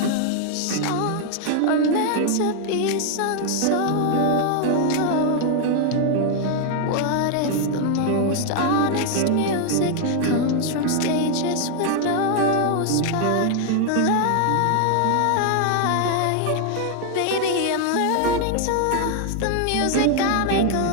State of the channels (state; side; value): different; both; correlation 0.00